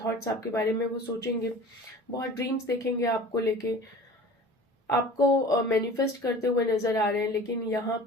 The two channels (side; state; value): both; normal; correlation 0.41